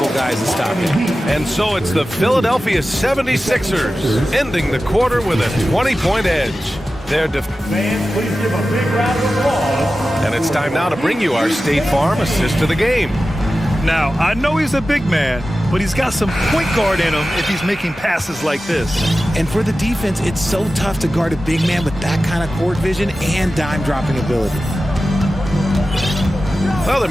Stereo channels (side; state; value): both; normal; correlation 0.94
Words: guys to stop him. And so it's the Philadelphia 76ers ending the quarter with a 20-point edge. Fans, please give a big round of applause. And it's time now to bring you our State Farm assist of the game. Now, I know he's a big man, but he's got some point guard in him if he's making passes like this. And for the defense, it's so tough to guard a big man with that kind of court vision and dime-dropping ability. Well, there